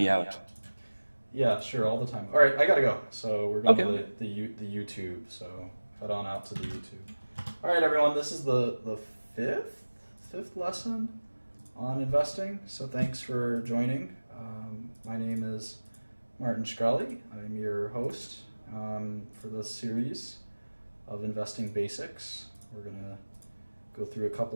out. Yeah, sure, all the time. All right, I gotta go. So we're going Okay. to the YouTube. So head on out to the YouTube. All right, everyone. This is the fifth lesson on investing. So thanks for joining. My name is Martin Shkreli. I'm your host for this series of investing basics. We're gonna go through a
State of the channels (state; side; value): inverted; both; correlation -1.00